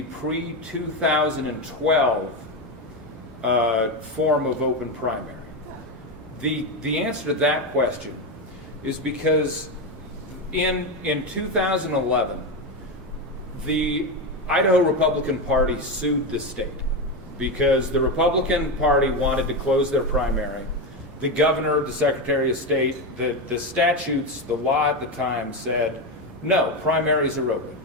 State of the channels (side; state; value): both; normal; correlation 0.13